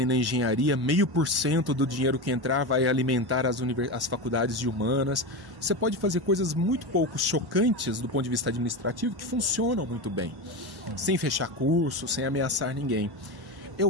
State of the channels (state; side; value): late; left; 1.1 ms